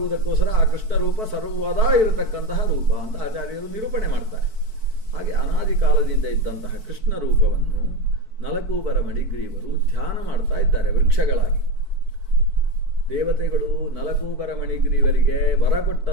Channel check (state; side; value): late; left; 4.6 ms